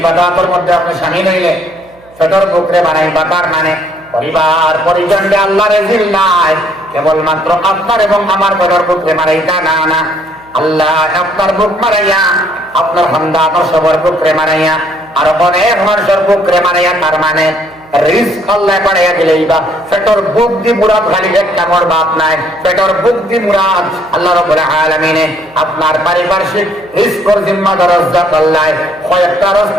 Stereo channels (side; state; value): right; noise; hum, 28 dB below the sound